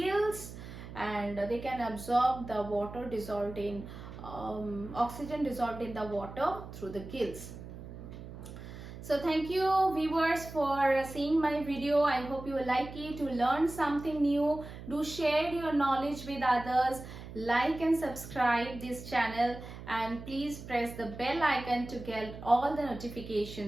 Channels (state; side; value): noise; right; hum, 12 dB below the sound